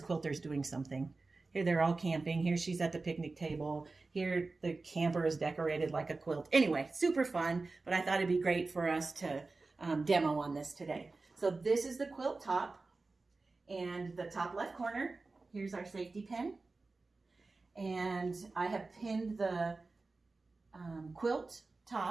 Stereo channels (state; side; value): quieter; left; 3.6 dB